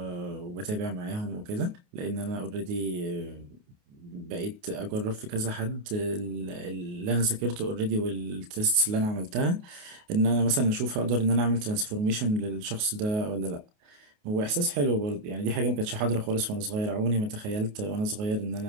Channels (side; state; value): left; late; 28 ms